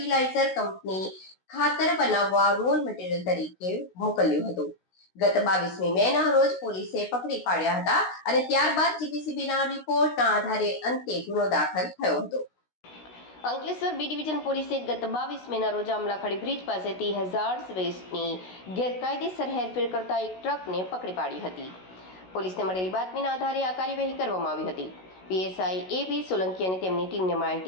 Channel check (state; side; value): late; right; 16 ms